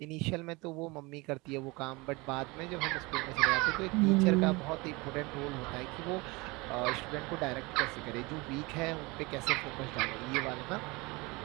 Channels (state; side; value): quieter; left; 24.8 dB